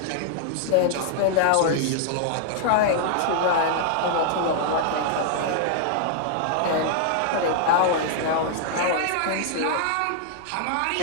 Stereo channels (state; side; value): different; both; correlation -0.01